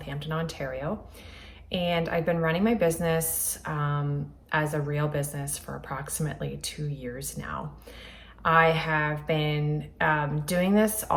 Ontario. And I've been running my business as a real business for approximately 2 years now. I have been doing this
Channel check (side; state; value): both; identical; correlation 1.00